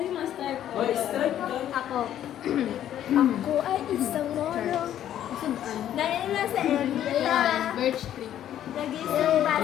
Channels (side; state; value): right; quieter; 11.2 dB